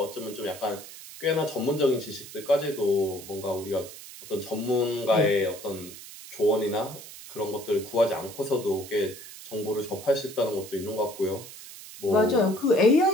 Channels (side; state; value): right; noise; hiss, 15 dB below the sound